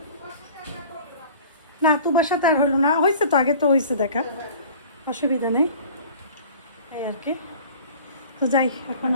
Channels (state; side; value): inverted; both; correlation -0.45